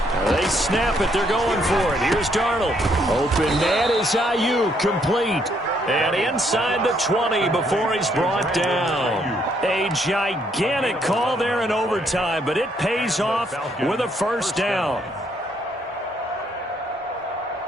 They snap it. They're going for it. Here's Darnold. Open man is Ayuk, complete. And inside the 20 before he's brought down. A gigantic call there in overtime, but it pays off with a first down.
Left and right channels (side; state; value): both; normal; correlation 0.71